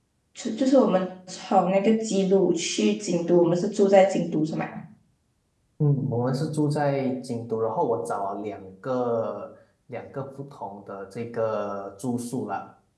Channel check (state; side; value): identical; both; correlation 1.00